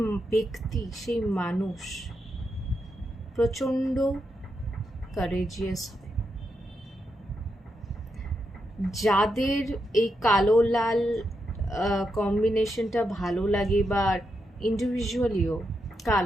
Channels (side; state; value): both; normal; correlation 0.84